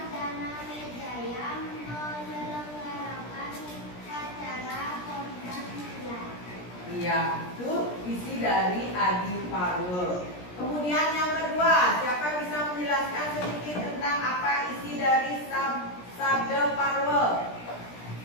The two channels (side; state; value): right; late; 17 ms